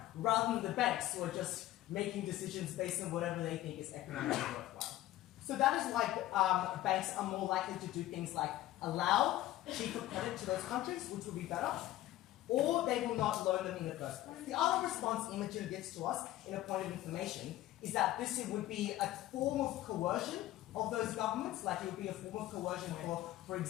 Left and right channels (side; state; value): right; quieter; 15.1 dB